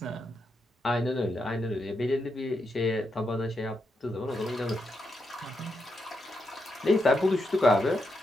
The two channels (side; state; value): both; normal; correlation 0.83